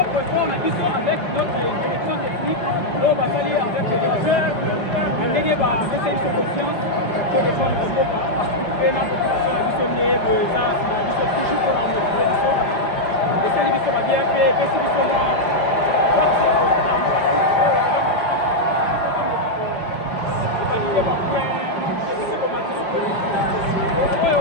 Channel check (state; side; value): late; right; 5.1 ms